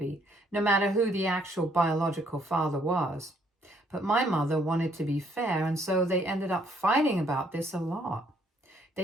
no matter who the actual biological father was. But my mother wanted to be fair, and so they ended up fighting about this a lot.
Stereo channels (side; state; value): both; normal; correlation 0.68